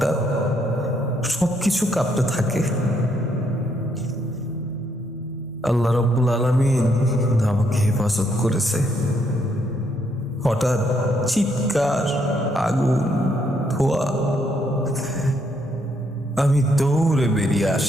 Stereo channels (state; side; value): normal; both; correlation 0.73